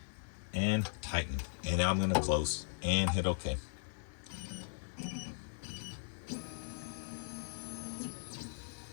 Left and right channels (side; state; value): right; silent; 52 dB below the other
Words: and tighten. And now I'm going to close and hit OK.